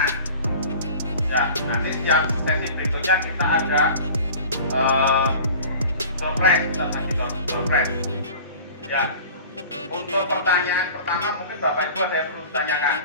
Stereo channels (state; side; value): inverted; both; correlation -0.42